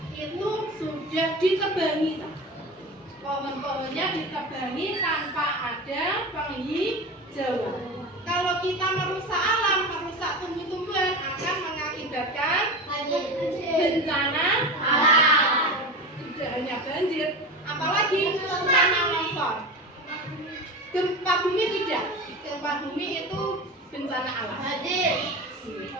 itu sudah ditebangi, pohon-pohonnya ditebangi tanpa ada penghijauan. Kalau kita merusak alam, merusak tumbuh-tumbuhan akan mengakibatkan bencana alam. Tidak hanya banjir, apalagi tanah longsor. Gempa bumi tidak. Gempa bumi itu bencana alam.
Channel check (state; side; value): normal; both; correlation 0.27